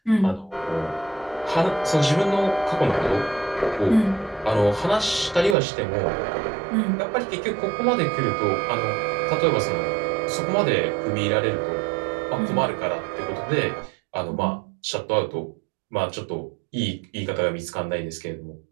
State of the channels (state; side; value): drops out; left; at 5.6 s